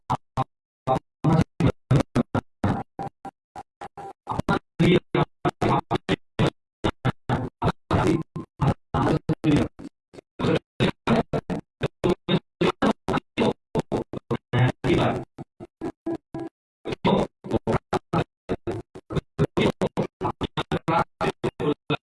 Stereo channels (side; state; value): both; identical; correlation 1.00